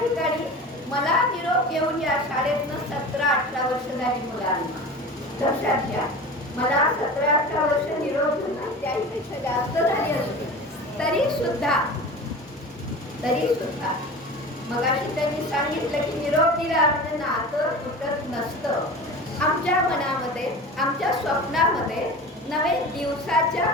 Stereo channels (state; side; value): normal; both; correlation 0.34